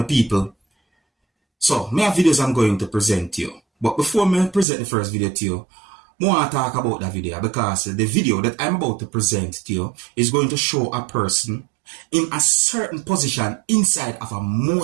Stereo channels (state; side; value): drops out; left; at 4.7 s